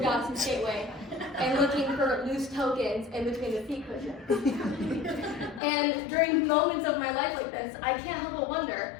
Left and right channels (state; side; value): drops out; right; at 5.6 s